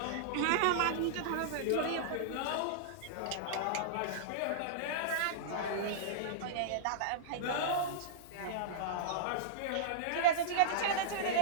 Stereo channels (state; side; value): different; both; correlation -0.02